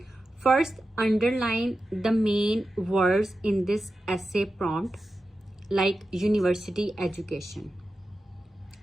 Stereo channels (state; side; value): normal; both; correlation 0.92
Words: First, underline the main words in this essay prompt, like university education.